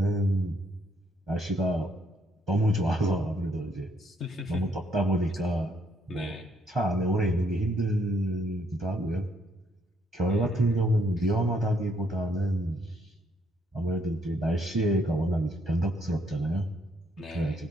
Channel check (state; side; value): normal; both; correlation 0.71